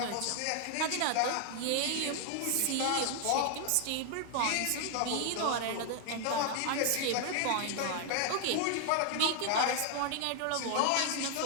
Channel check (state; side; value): different; both; correlation 0.00